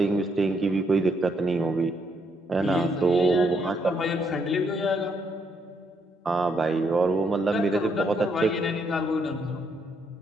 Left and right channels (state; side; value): normal; both; correlation 0.74